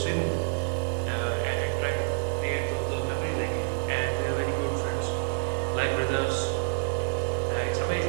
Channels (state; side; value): silent; left; digital silence